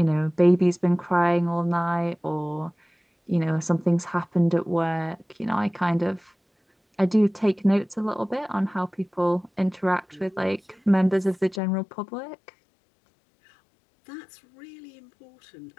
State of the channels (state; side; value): drops out; right; at 11.6 s